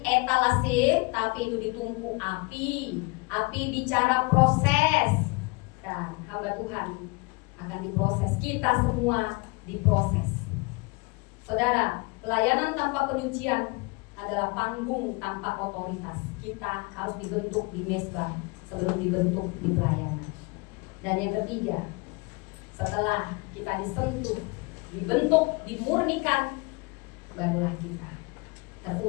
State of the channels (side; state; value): right; quieter; 27.3 dB